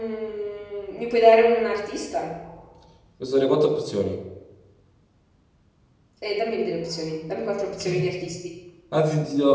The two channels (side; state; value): both; identical; correlation 1.00